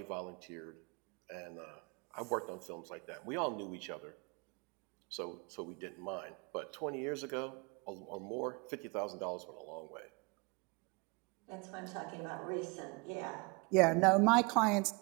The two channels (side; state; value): left; quieter; 29.2 dB